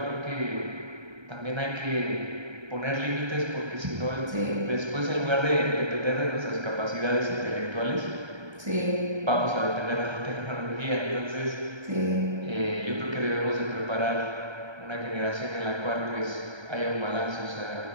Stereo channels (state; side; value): late; left; 1.3 ms